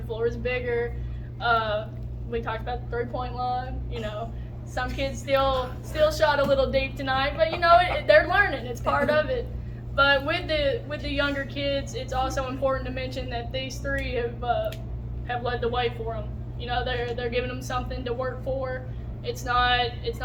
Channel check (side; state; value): both; identical; correlation 1.00